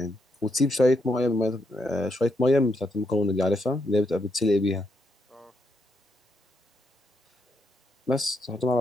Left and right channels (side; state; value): both; normal; correlation 0.78